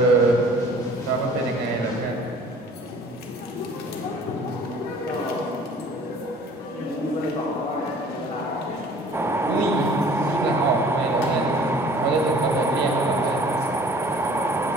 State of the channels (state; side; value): normal; both; correlation 0.50